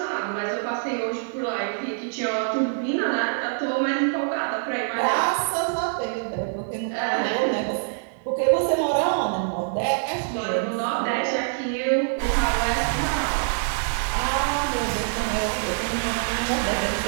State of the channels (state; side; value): silent; left; 62 dB below the other